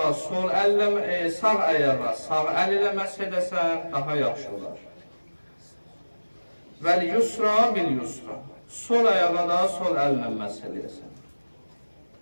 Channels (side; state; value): both; inverted; correlation -1.00